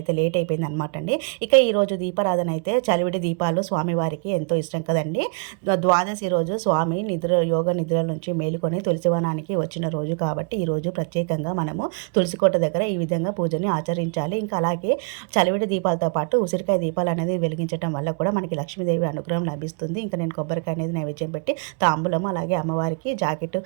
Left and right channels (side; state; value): left; quieter; 39.2 dB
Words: లేట్ అయిపోయింది అనమాట అండి. ఇక ఈరోజు దీపారాధన అయితే చలివిడి దీపాలు స్వామివారికి ఎంతో ఇష్టం కదండి. ద్వాదశి రోజు స్వామి యోగ నిద్ర నుంచి మేలుకొని తులసివనానికి వచ్చిన రోజు కాబట్టి ఈరోజు ప్రత్యేకంగా మనము తులసికోట దగ్గర ఈ విధంగా పూజని ఆచరించాలి. ఇంకా అలాగే చలివిడి దీపాలతో పాటు ఉసిరికాయ దీపాలు అనేది వెలిగించడం వల్ల కూడా మనకి లక్ష్మీదేవి అనుగ్రహం లభిస్తుంది. ఇంకా నేను కొబ్బరికాయ అనేది నైవేద్యం పెట్టి తాంబూలం, అలాగే అమ్మవారికి జాకెట్,